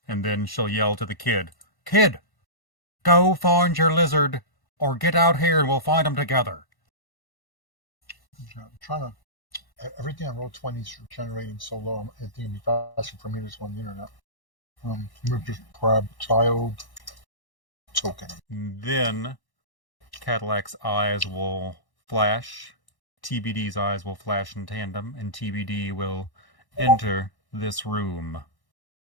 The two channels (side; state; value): right; late; 1.1 ms